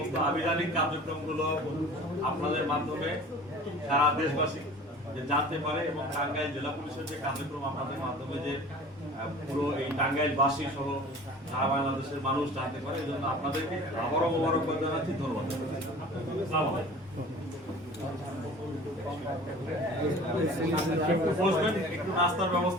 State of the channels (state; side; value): normal; both; correlation 0.43